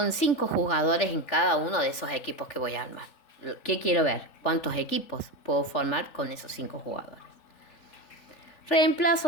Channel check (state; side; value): late; right; 3.4 ms